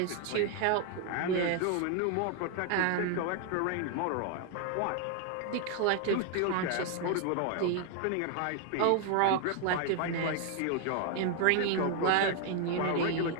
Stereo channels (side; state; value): both; different; correlation 0.00